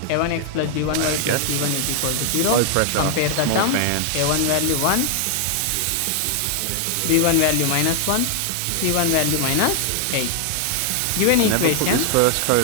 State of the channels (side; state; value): both; different; correlation 0.00